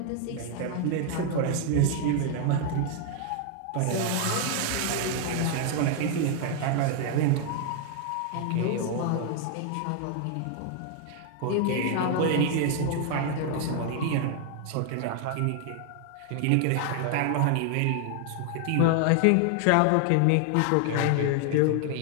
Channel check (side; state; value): both; different; correlation 0.00